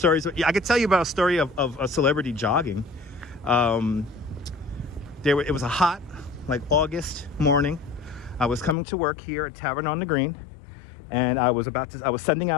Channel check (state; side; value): drops out; right; at 8.8 s